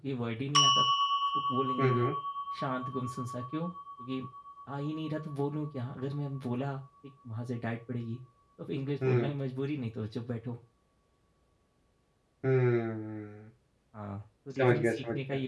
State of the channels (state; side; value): identical; both; correlation 1.00